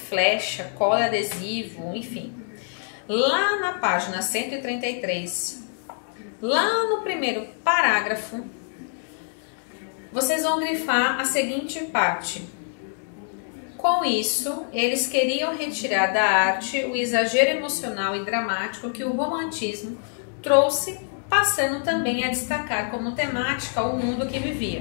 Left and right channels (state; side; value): silent; right; 62 dB below the other